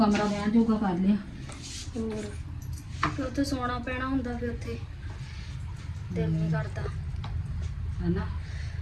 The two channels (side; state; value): both; identical; correlation 1.00